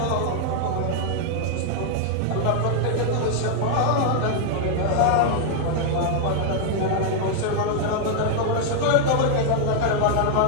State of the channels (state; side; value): different; both; correlation 0.00